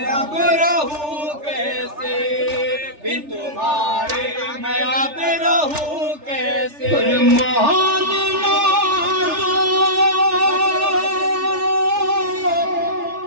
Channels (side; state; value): left; late; 3.4 ms